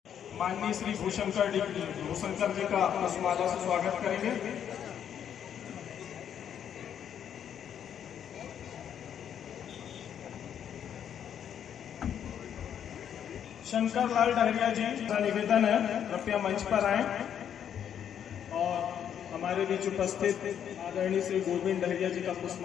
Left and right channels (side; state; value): right; quieter; 9.0 dB